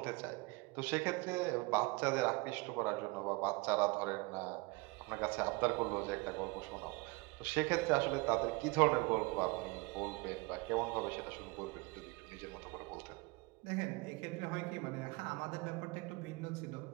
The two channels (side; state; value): left; quieter; 25.6 dB